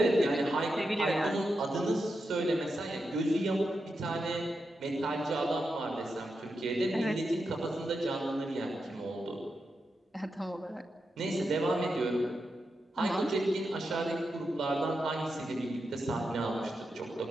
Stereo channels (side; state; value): both; normal; correlation 0.87